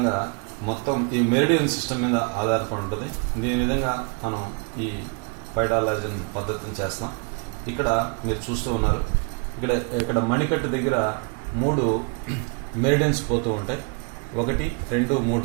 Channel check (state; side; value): quieter; left; 34.9 dB